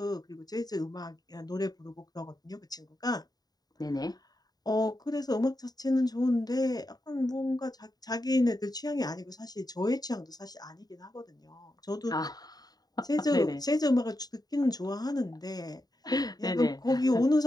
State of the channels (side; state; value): right; late; 0.19 ms